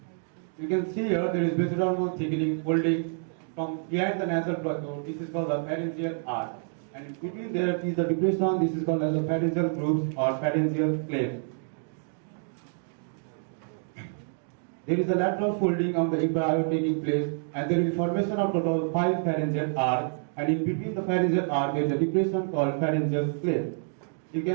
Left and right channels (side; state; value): left; silent; 59 dB below the other